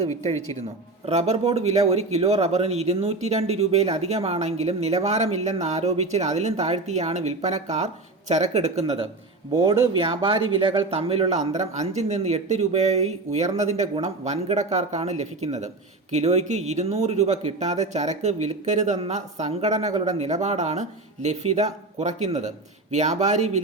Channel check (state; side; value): quieter; left; 3.2 dB